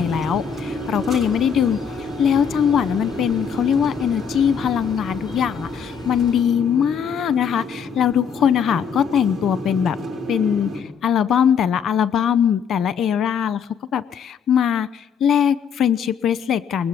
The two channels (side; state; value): right; quieter; 7.5 dB